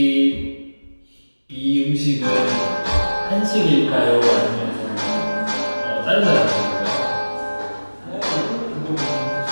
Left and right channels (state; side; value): inverted; both; correlation -1.00